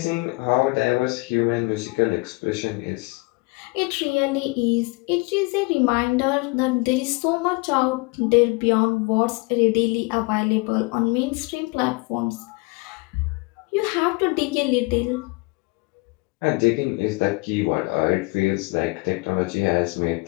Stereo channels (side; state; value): right; quieter; 27.2 dB